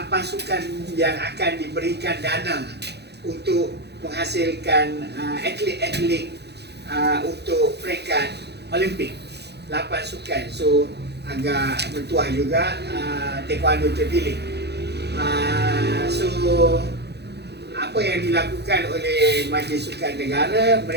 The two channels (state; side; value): late; left; 0.48 ms